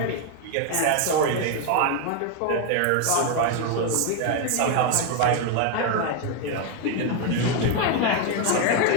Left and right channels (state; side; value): different; both; correlation 0.01